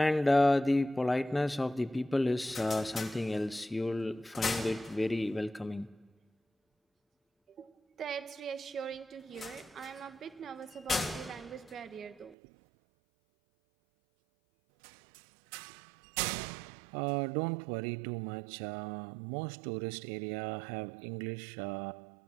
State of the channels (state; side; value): drops out; left; at 12.4 s